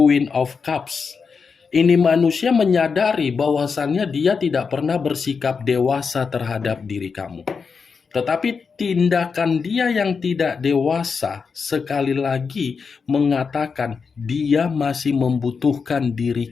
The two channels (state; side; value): quieter; right; 5.4 dB